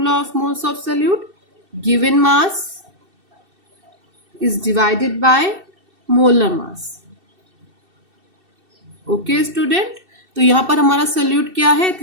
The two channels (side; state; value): left; late; 2.6 ms